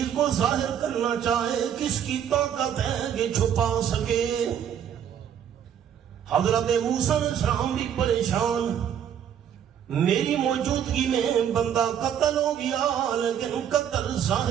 کو ظاہر کرنا چاہے کس کی طاقت ہے کہ چھپا سکے۔ حضرت موسیٰ علیہ السلام بھی پریشان، میری موجودگی میں بندہ قتل ہو گیا لیکن قتل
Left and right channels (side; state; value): left; quieter; 9.1 dB